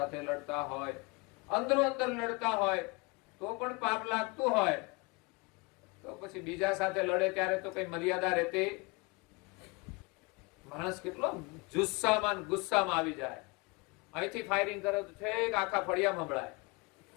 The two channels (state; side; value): quieter; right; 27.4 dB